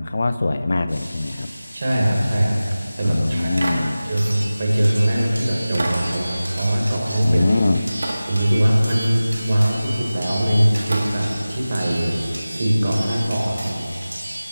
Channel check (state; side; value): inverted; both; correlation -0.96